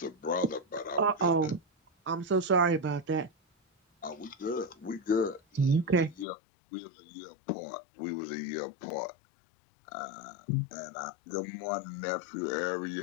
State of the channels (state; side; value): drops out; right; at 6.2 s